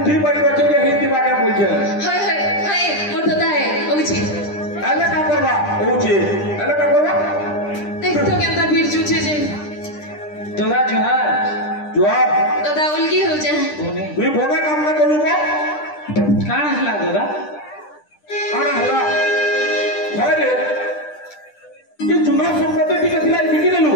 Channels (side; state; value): right; late; 10 ms